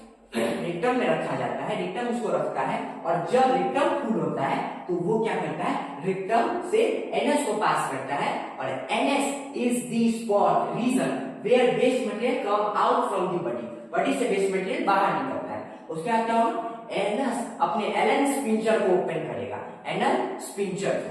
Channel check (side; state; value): both; identical; correlation 1.00